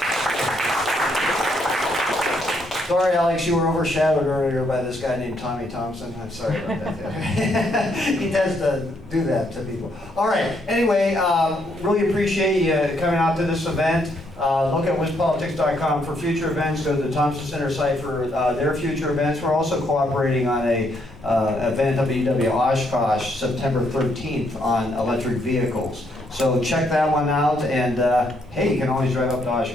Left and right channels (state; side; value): normal; both; correlation 0.73